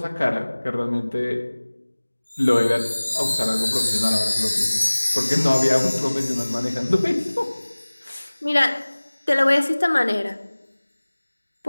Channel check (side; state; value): both; inverted; correlation -1.00